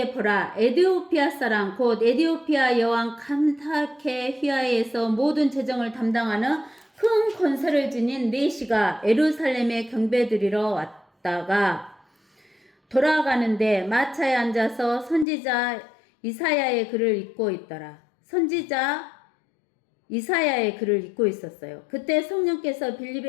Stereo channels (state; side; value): drops out; right; at 15.2 s